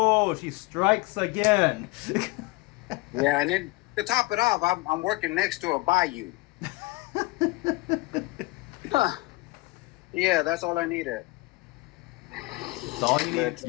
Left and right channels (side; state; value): right; quieter; 22.3 dB